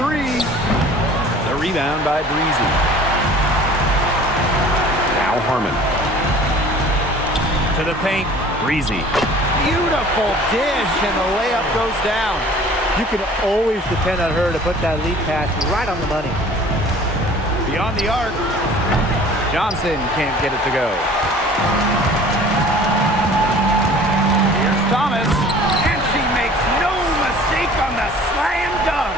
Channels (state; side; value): normal; both; correlation 0.48